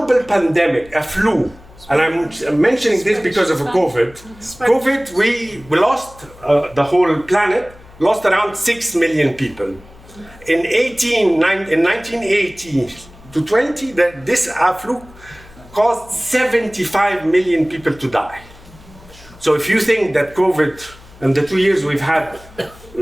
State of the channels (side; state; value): left; noise; hum, 23 dB below the sound